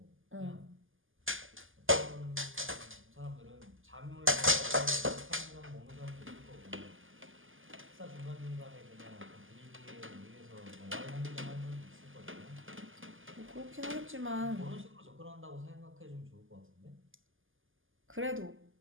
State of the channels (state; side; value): late; left; 0.58 ms